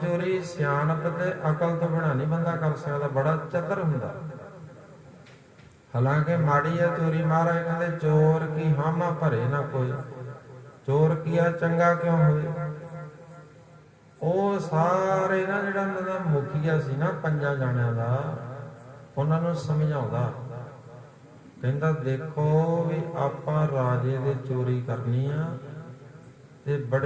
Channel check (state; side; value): identical; both; correlation 1.00